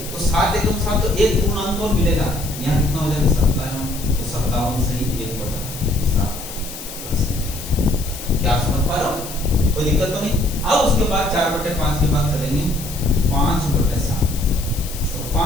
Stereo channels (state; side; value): noise; left; hiss, 11 dB below the sound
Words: तो 7 एकम 7 तो एक पूर्णांक और मिलेगा, यहाँ कितना हो जाएगा? 57। तो 57 सही 1/7। क्या आप समझ पा रहे हो? कोई दिक्कत तो नहीं। अब उसके बाद 4/5 के बाद चलेंगे 5/7। तो